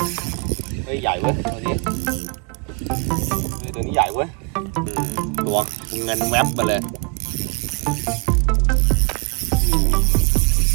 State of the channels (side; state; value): left; quieter; 32.3 dB